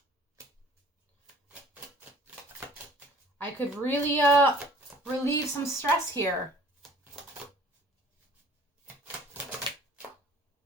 I could really relieve some stress here.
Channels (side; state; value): both; normal; correlation 0.52